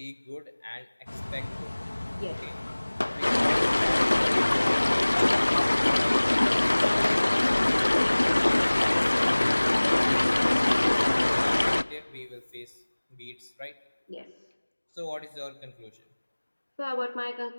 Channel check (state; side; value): inverted; both; correlation -1.00